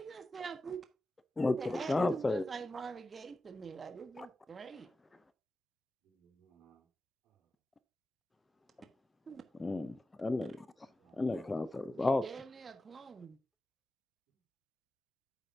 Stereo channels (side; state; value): both; normal; correlation 0.93